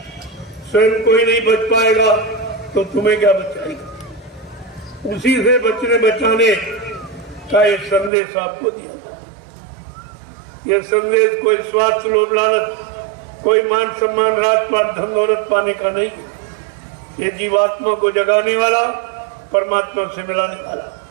स्वयं कोई नहीं बच पाएगा तो तुम्हें क्या बचाएगा। उसी से बचने बचाने का एक संदेश आपको दिया। यह संदेश कोई स्वार्थ लोभ लालच, कोई मान सम्मान राजपाट धन दौलत पाने का नहीं, ये जीवात्मा को जगाने वाला, परमात्मा से मिलाने वाला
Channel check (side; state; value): left; drops out; at 8.1 s